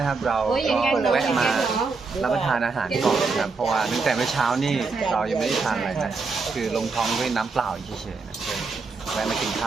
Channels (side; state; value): left; quieter; 4.4 dB